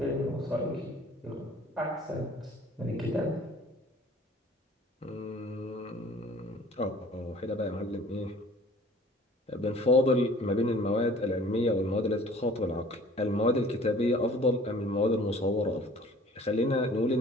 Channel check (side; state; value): both; normal; correlation 0.51